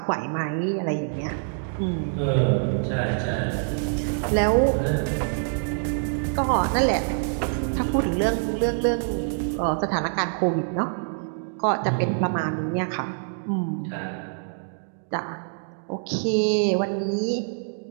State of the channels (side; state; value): left; silent; 61 dB below the other